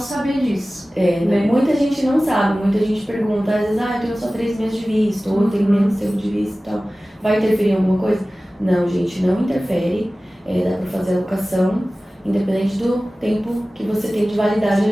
disso. Né? Muita gente não sabe, muita gente pergunta, às vezes, eu tenho só 3 meses de visto, ou eu tenho menos tempo de visto e tal. Vai interferir em alguma coisa? Não, gente, não interfere. Dá pra fazer a locação, independente do tempo que você tem de validade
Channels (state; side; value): normal; both; correlation 0.97